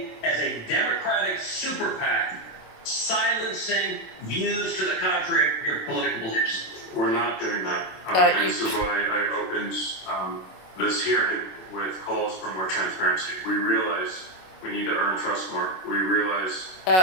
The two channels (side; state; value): right; late; 27 ms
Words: as a Democratic super PAC, silencing views to the contrary of your political beliefs? We're not doing that. And this is why I opened this hearing with calls for more transparency. We realize we need to earn trust more. We realize